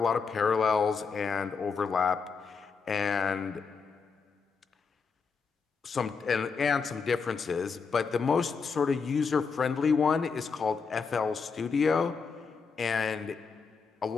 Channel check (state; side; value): quieter; right; 5.3 dB